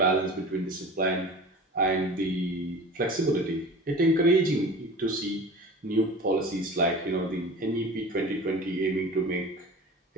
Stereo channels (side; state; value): both; normal; correlation 0.37